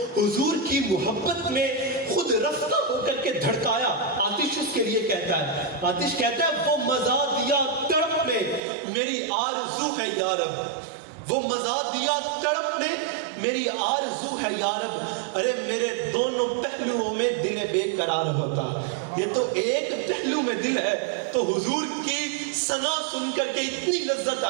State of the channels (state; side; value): drops out; left; at 8.6 s